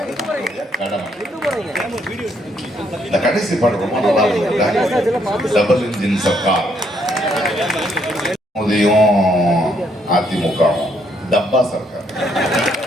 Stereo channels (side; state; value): both; normal; correlation 0.71